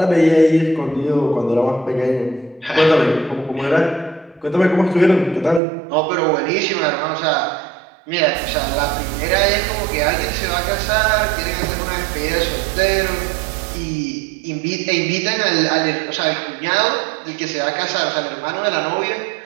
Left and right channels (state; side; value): drops out; left; at 5.6 s